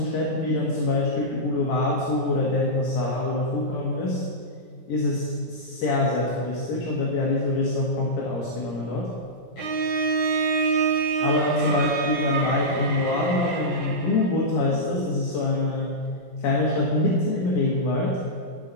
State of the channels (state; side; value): late; right; 16 ms